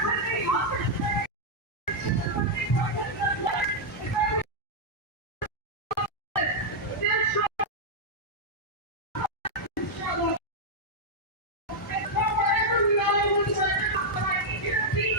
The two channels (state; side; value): normal; both; correlation -0.03